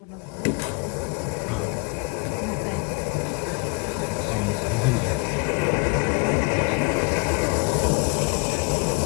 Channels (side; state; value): right; quieter; 33.0 dB